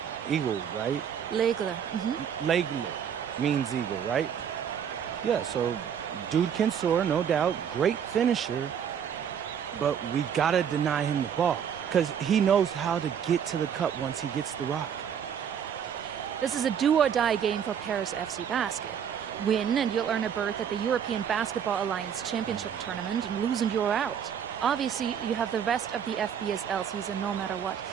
eagle, right? L'Aigle. L'Aigle means eagle, right? Yeah, so dude can soar, no doubt. Great finisher. But we gotta deny him the ball, because he knows how to get to the cup once he gets the rock. This is a do-or-die game for Paris FC Basket. Win and you'll earn a berth at the European Basketball Alliance Championship Tournament, and lose and you're out. Obviously, you have the rest of the FBSL season no matter what.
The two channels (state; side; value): quieter; left; 8.2 dB